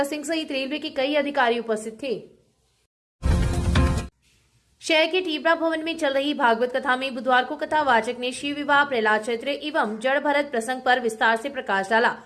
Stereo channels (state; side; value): identical; both; correlation 1.00